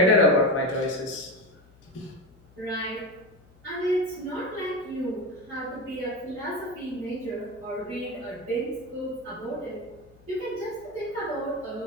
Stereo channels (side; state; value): left; noise; hum, 27 dB below the sound